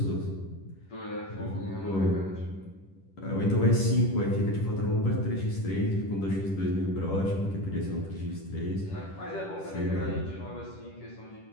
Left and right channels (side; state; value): right; late; 10 ms